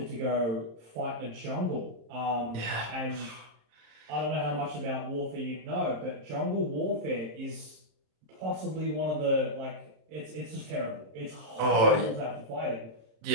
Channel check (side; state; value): left; late; 26 ms